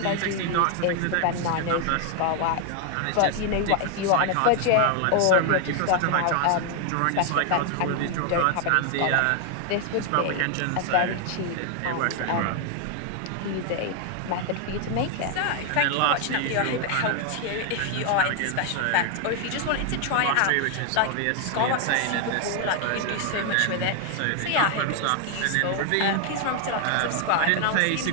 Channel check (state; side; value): different; both; correlation 0.00